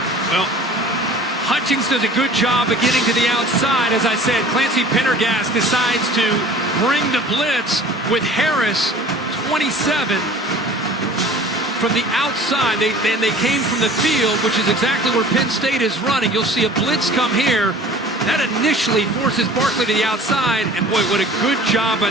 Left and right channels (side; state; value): both; normal; correlation 0.46